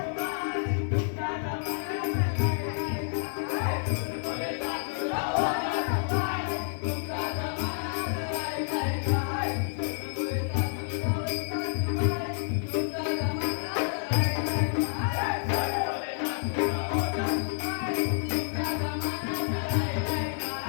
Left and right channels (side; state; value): right; silent; digital silence